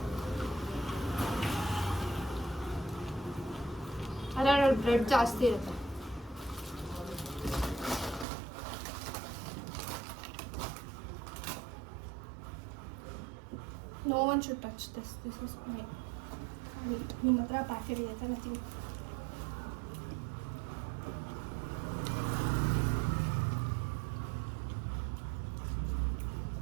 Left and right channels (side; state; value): left; drops out; at 8.2 s